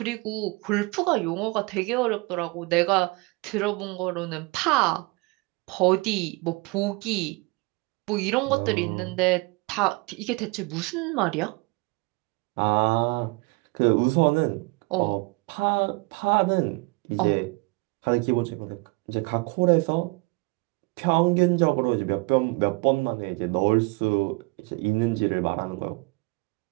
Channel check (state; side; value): quieter; left; 26.8 dB